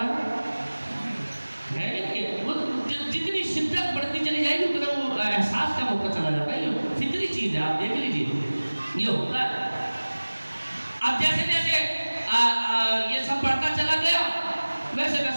وہ جتنی شدت بڑھتی چلی جائے گی اتنا وہ احساس کا موقع چلا جاتا ہے. یہ فطری چیز ہے, آپ دیکھ لیجیے یہ ہوتا ہے. اب جیسے جیسے یہ سب بڑھتا چلا گیا ویسے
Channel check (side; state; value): both; inverted; correlation -1.00